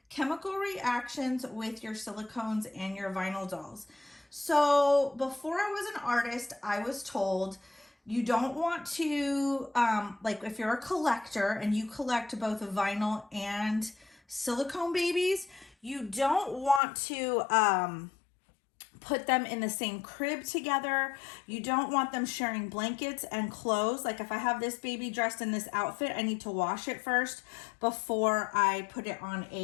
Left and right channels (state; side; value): drops out; right; at 16.8 s